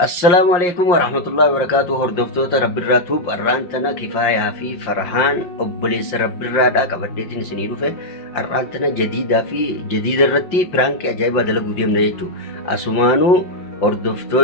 السلام عليكم ورحمة الله وبركاته. هردفتوتا رب الراتوب الرانتنا كفاية في فرحان أبليس رب الرادا كبديتين سنيرو في الرانتنا جديد الرتي برانك أجايبا دلقو ديم نيجو أسمانو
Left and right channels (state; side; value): late; right; 5.6 ms